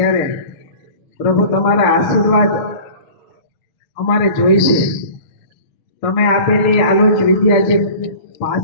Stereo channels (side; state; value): right; late; 6.9 ms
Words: પ્રભુ તમારા આશીર્વાદ અમારે જોઈશે. તમે આપેલી આલોચ વિદ્યા જે